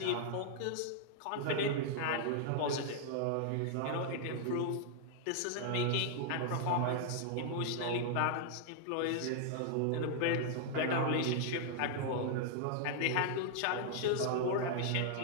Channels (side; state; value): both; different; correlation 0.00